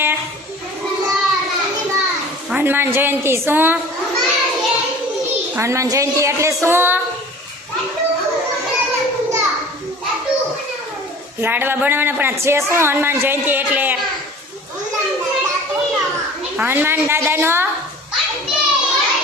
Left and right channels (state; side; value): normal; both; correlation 0.44